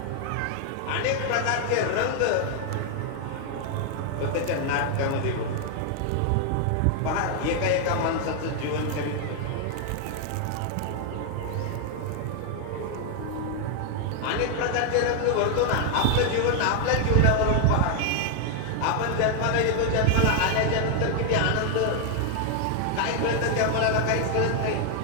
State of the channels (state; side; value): different; both; correlation 0.00